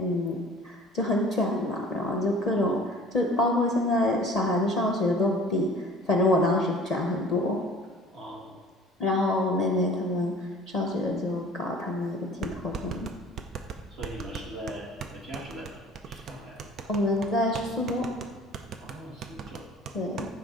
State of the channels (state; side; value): normal; both; correlation 0.47